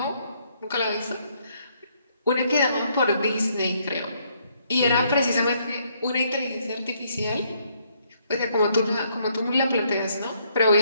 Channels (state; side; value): inverted; both; correlation -0.70